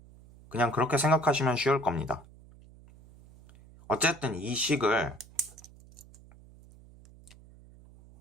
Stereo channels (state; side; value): noise; right; hum, 23 dB below the sound